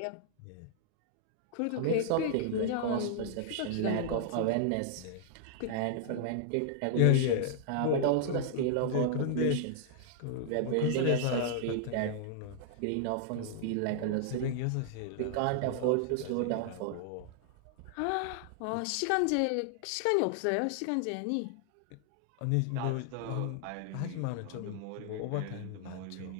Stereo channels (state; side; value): different; both; correlation -0.01